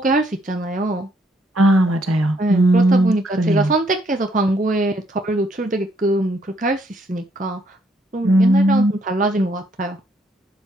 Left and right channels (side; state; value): both; normal; correlation 0.71